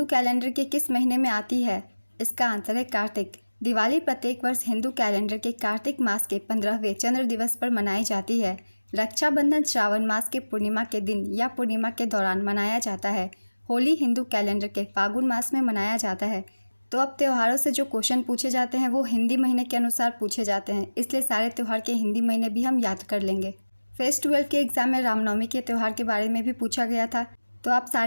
कैलेंडर के किस महीने में आती है? इसका आंसर है कार्तिक। दिवाली प्रत्येक वर्ष हिंदू कैलेंडर के कार्तिक मास के 15वें चंद्र दिवस पर मनाई जाती है। रक्षाबंधन श्रावण मास के पूर्णिमा के दिन या पूर्णिमा के दौरान मनाया जाता है। होली हिंदू कैलेंडर के फागुन मास में मनाया जाता है। तो अब त्योहारों से जो क्वेश्चन पूछे जाते हैं वो हिंदी महीने के अनुसार पूछे जाते हैं, इसलिए सारे त्यौहार के हिंदी महीने भी हम याद कर लेंगे। फेस 12 के एग्जाम में रामनवमी के त्यौहार के बारे में भी पूछा गया था, तो आप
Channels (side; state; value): both; inverted; correlation -1.00